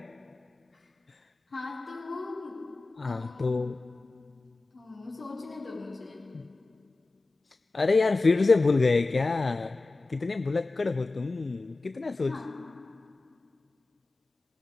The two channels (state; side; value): quieter; right; 3.4 dB